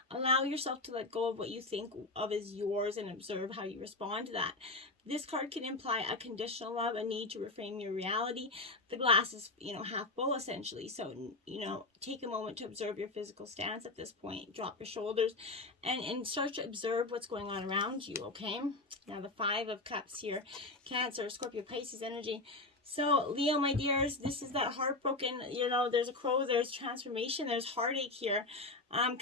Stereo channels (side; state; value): right; quieter; 3.1 dB